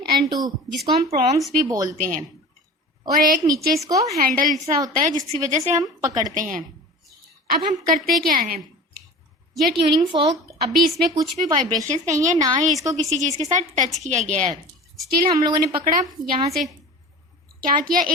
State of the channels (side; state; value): both; normal; correlation 0.36